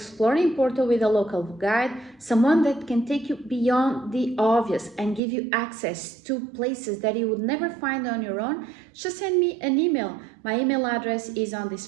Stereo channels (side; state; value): left; drops out; at 5.2 s